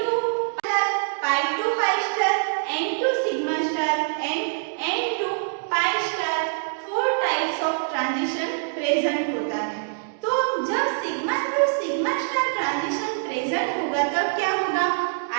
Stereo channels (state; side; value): silent; left; digital silence